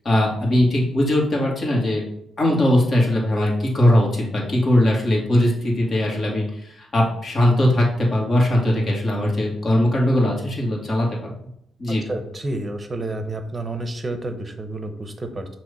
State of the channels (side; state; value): both; normal; correlation 0.88